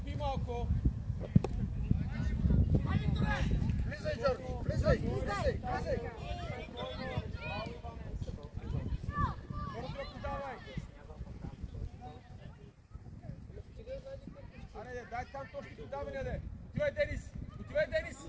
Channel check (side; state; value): both; identical; correlation 1.00